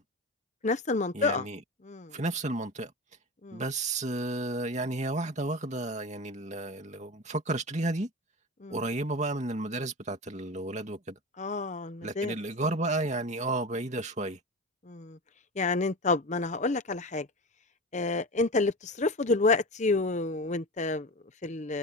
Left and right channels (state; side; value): normal; both; correlation 0.27